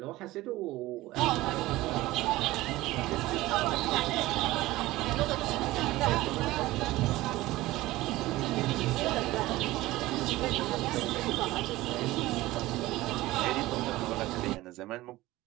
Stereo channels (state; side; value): quieter; left; 18.0 dB